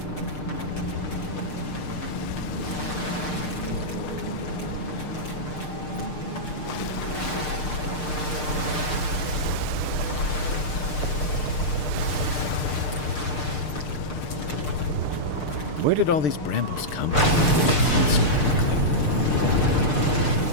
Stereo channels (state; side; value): late; right; 6.6 ms